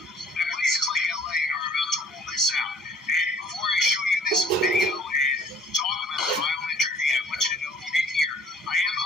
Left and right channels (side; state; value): both; normal; correlation 0.56